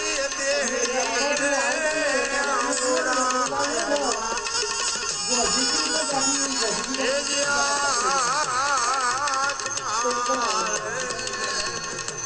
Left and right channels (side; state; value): both; identical; correlation 1.00